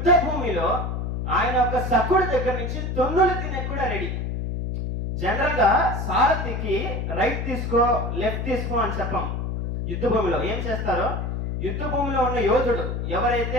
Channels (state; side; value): noise; left; hum, 3 dB below the sound